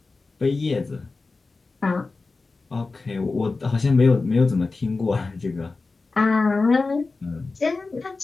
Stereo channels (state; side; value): quieter; right; 3.8 dB